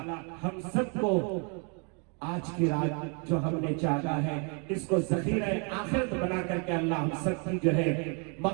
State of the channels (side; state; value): left; quieter; 34.7 dB